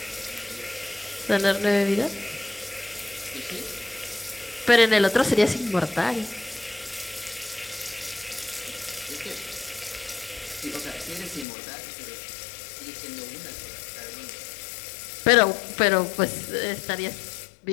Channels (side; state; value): right; drops out; at 11.5 s